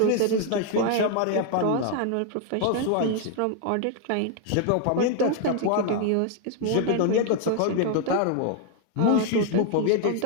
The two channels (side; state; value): both; different; correlation 0.00